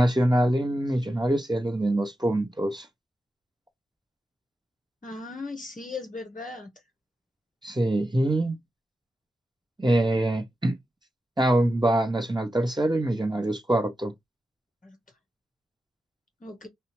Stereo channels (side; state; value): both; normal; correlation 0.90